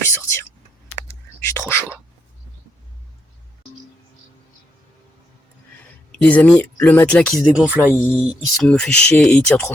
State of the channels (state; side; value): normal; both; correlation 0.78